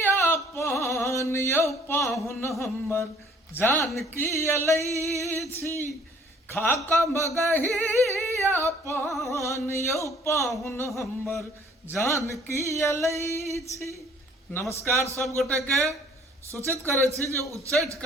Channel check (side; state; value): both; normal; correlation 0.57